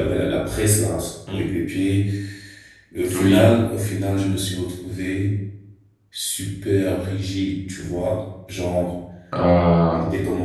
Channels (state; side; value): identical; both; correlation 1.00